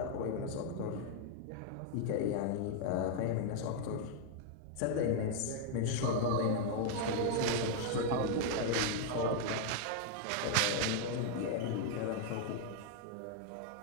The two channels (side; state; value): both; different; correlation 0.00